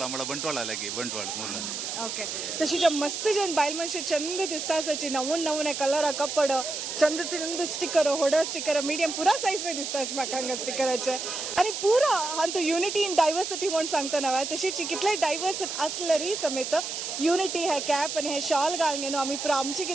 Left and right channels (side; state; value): right; noise; hiss, 5 dB below the sound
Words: म्हळ्यार बंटवाळा लागी बंटवाळ मूल ओके तशी मस्त जन बायल मनशे चंद दिसता आसाची नवून नवून कलरा कपड चंद चंद स्टिकर होडर स्टिकर मिडियम पुरा सायज पे दिसता म्हाका हांगा स्टिकराचे आणि पुरा हांव युनिटी इन डायवर्सिटी म्हणून सांगता नव्हे तशीच कितले डायवर्स असलेली समेत युनिटी हे कॅप आणि हे शॉल घालून घेऊन आम्ही पुरा आमची